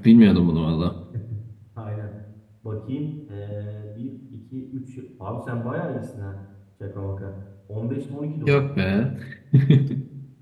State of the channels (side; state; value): both; identical; correlation 1.00